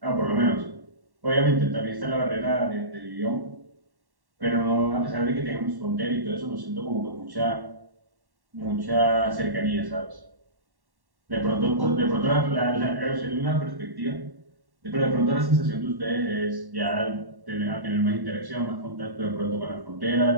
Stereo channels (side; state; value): left; late; 1.1 ms